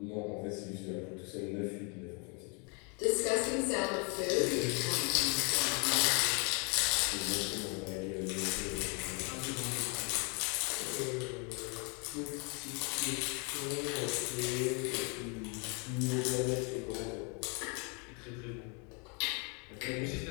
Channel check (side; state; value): right; quieter; 34.4 dB